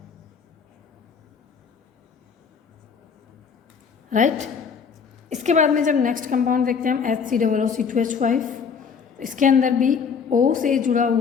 राइट। इसके बाद में जब नेक्स्ट कंपाउंड देखते हैं हम HCOOC2H5, इसके अंदर भी O से जुड़ा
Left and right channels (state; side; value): quieter; right; 6.2 dB